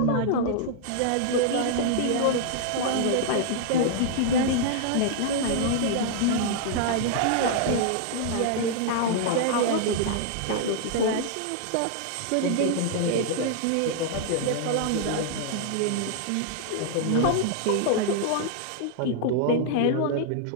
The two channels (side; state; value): both; different; correlation -0.01